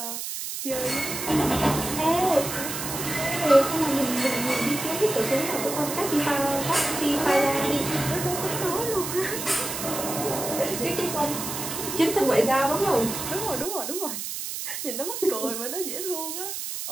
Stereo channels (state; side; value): noise; right; hiss, 5 dB below the sound